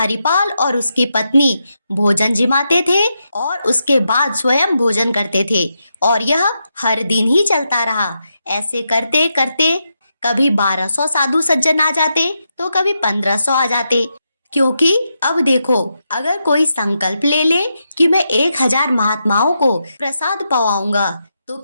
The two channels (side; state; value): both; inverted; correlation -0.84